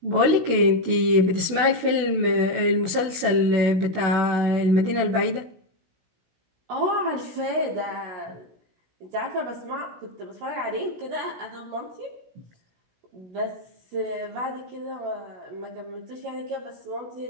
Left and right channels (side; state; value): left; late; 16 ms